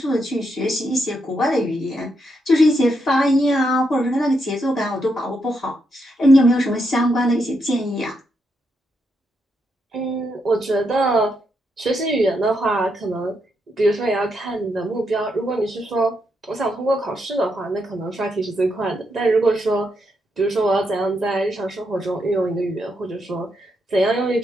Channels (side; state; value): both; normal; correlation 0.80